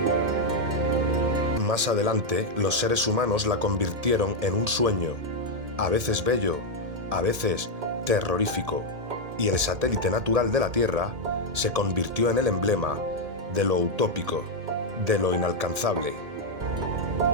Más adelante, los seres humanos la convirtieron en un sueño, a veces bello, a veces terrorífico, y el satélite natural de la Tierra se convirtió en el emblema de lo utópico, de lo inalcanzable.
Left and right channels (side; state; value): left; late; 1.8 ms